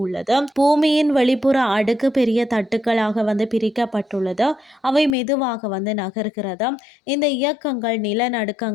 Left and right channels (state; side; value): drops out; right; at 5.2 s